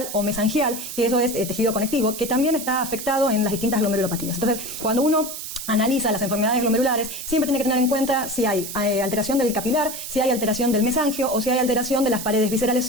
o mesangial, que eso es tejido conectivo, que también está afectado en las distintas glomerulopatías. Entonces, cuando uno analiza las enfermedades glomerulares, siempre tiene que tener en cuenta si hay alteración del capilar, si hay alteración del mesangio o si hay alteración de las paredes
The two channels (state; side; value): noise; right; hiss, 8 dB below the sound